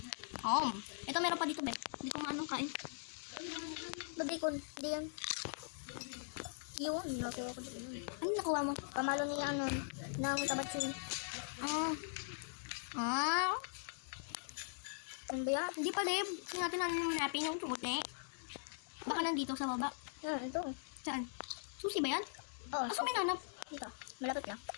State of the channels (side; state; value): right; silent; digital silence